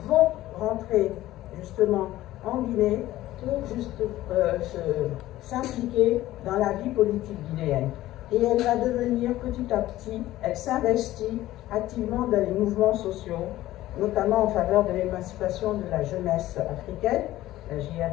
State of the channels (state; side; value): quieter; right; 15.4 dB